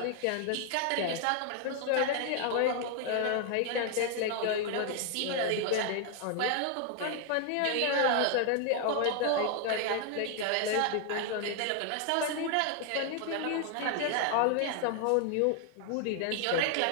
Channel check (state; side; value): different; both; correlation 0.00